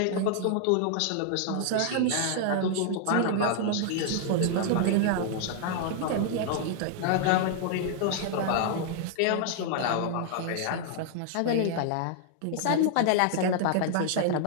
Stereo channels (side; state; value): both; different; correlation -0.01